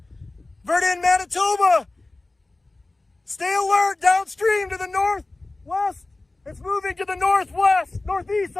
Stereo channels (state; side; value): quieter; right; 3.0 dB